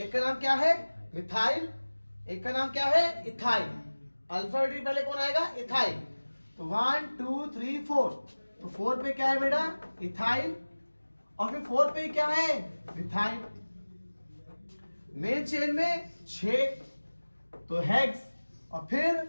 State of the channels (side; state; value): both; inverted; correlation -1.00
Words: का नाम क्या है मिथाइल, एक का नाम क्या है इथाइल, अल्फाबेटिक पहले कौन आएगा, इथाइल। तो 1 2 3 4, तो 4 पे क्या है बेटा, इथाइल, और फिर 4 पे क्या है, मिथाइल। मेन चेन में 6, तो हेक्स, और फिर